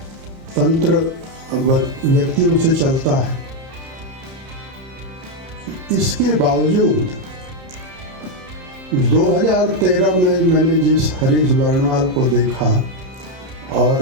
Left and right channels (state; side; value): late; left; 31 ms